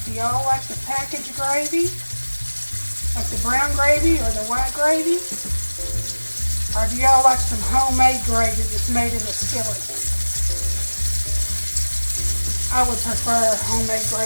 Do y'all like the packaged gravy? Like the brown gravy or the white gravy? Or do y'all like some homemade gravy that's made in a skillet? I would prefer homemade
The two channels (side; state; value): both; inverted; correlation -1.00